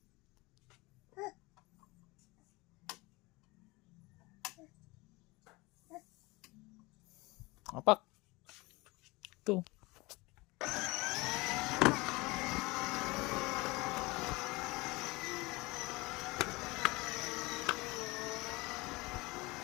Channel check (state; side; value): quieter; right; 23.4 dB